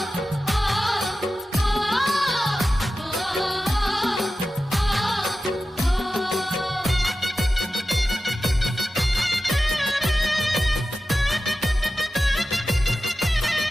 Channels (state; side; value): normal; both; correlation 0.93